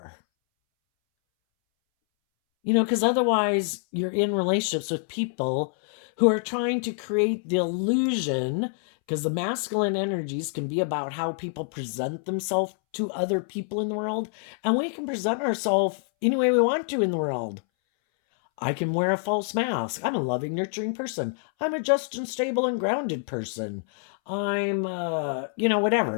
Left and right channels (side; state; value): right; silent; 61 dB below the other